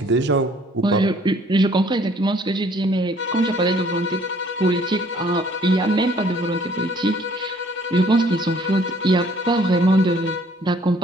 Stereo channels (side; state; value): both; normal; correlation 0.59